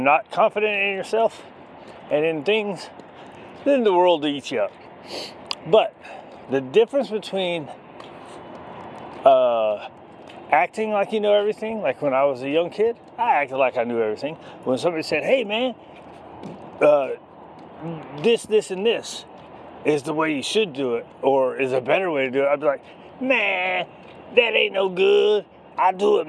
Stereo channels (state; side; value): identical; both; correlation 1.00